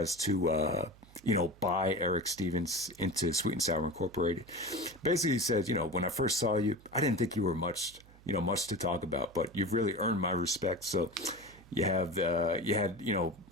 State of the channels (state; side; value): noise; right; hum, 24 dB below the sound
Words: to, buy Erick Stevens into Sweet and Sour Incorporated. Basically, he says, when I first saw you, I didn't think you were much to talk about, but you've really earned my respect. So you had